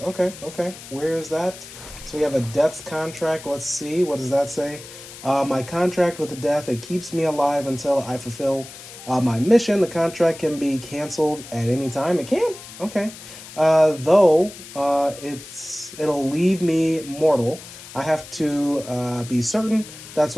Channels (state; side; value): noise; left; hiss, 15 dB below the sound